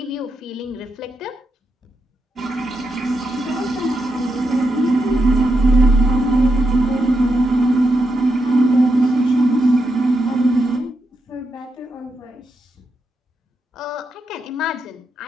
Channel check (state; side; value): normal; both; correlation 0.84